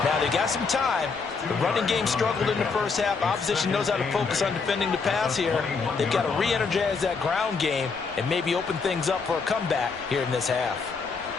Now, they got some time. The running game struggled in the first half. Opposition knows how to focus on defending the pass here. They've got to re-energize that ground game and maybe open things up for a comeback here in this half.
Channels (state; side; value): quieter; right; 4.9 dB